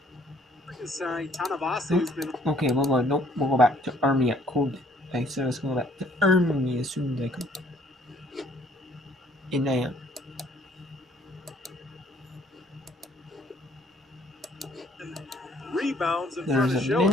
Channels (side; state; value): both; normal; correlation 0.61